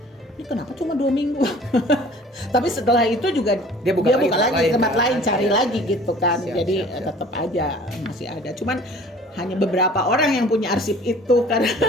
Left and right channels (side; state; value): both; normal; correlation 0.49